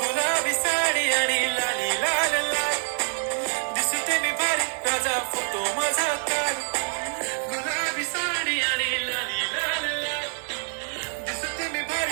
गुलाबी साडी आणि लाली लाल लाल दिसते मी भारी राजा फोटो माझा काल गुलाबी साडी आणि लाली लाल लाल दिसते मी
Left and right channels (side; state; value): left; silent; digital silence